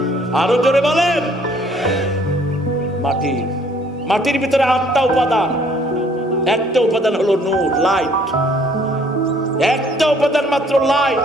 আরো জোরে বলেন। মাটি। মাটির ভিতরে 8টা উপাদান। একটা উপাদান হলো নূর, লাইট। একটা উপাদান মাত্র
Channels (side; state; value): both; normal; correlation 0.60